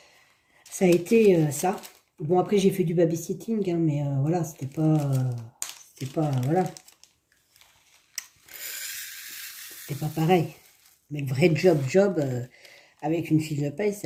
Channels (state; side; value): identical; both; correlation 1.00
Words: été ça. Bon, après, j'ai fait du babysitting, hein, mais voilà, c'était pas, voilà. C'était pas pareil. Mais le vrai job, avec une fiche de paye,